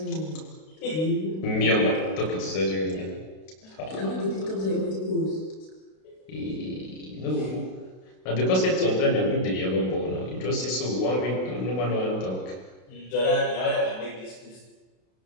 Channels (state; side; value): late; right; 32 ms